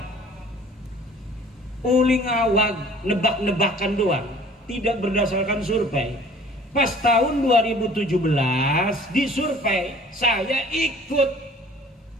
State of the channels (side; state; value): both; normal; correlation 0.50